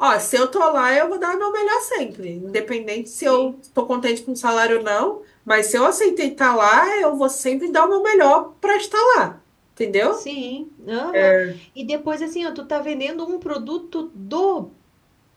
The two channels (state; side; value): identical; both; correlation 1.00